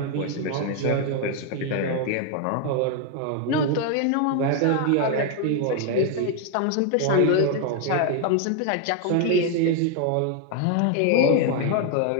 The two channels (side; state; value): both; different; correlation 0.01